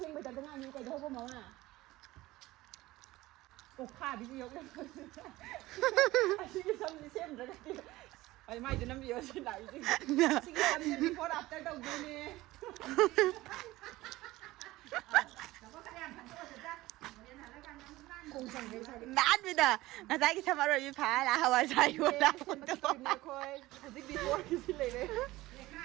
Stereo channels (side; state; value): left; quieter; 18.1 dB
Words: ba chacha nga ni kay daw pa mo na. Ko kha bi yok na. Sige something same ra ka. Ay mai dinam bi yo si lai si. Sige something before after daw ni. Nát bây giờ người ta cái thằng rồi bị phá là hava sai luôn đó. Khôi, dịch đi thôi cái gì này đấy.